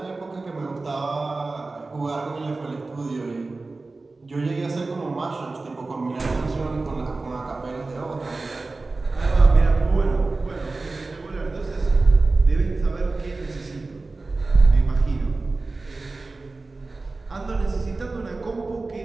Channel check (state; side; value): quieter; left; 3.5 dB